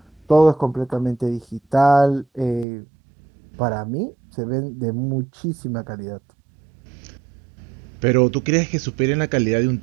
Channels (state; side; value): drops out; left; at 2.7 s